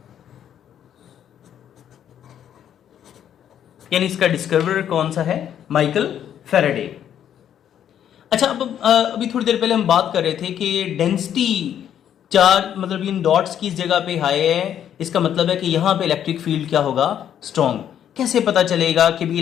यानी इसका डिस्कवरर कौन सा है? Michael Faraday. अच्छा, अब अभी थोड़ी देर पहले हम बात कर रहे थे कि डेंसिटी चार्ज, मतलब इन डॉट्स की जगह पे हाई है, इसका मतलब है कि यहां पे इलेक्ट्रिक फील्ड क्या होगा? स्ट्रॉन्ग। कैसे पता चलेगा कि भी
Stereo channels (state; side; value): quieter; right; 9.8 dB